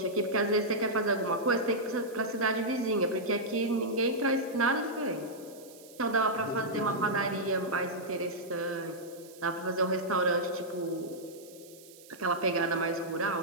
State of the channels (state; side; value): noise; right; hiss, 21 dB below the sound